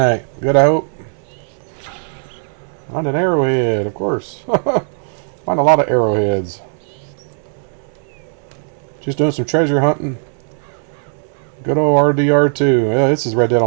Good, I hope? Found an arrowhead, of course. Find a lot of arrowheads. Just doing some treasure hunting. Good old RDR2. Yeah, this is Red Dead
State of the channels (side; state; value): left; silent; digital silence